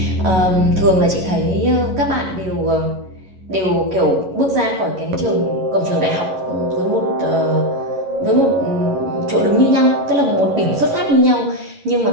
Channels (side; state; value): left; late; 11 ms